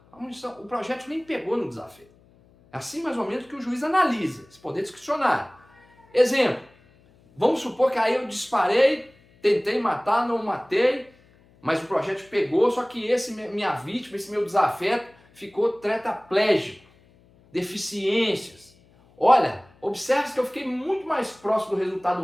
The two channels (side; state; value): left; noise; hum, 30 dB below the sound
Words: O projeto nem pegou no desafio. É assim mais ou menos que o juiz analisa, esse poder discricionário. Exemplo, Vamos supor que aí eu disparei, tentei matar, não matei, mas o projétil pegou, só que minha vítima, esse meu desafeto, ficou tetraplégico, deficiências. Olha, observe que eu fiquei muito mais próximo do